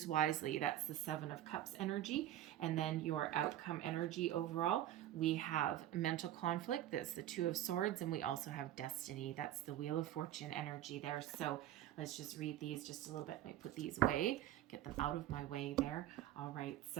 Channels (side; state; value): left; quieter; 12.7 dB